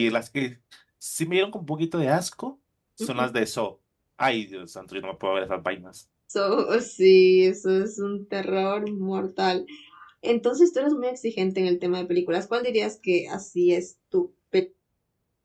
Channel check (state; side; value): identical; both; correlation 1.00